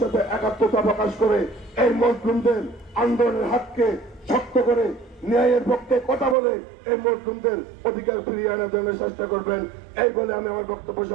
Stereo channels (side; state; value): left; drops out; at 6.4 s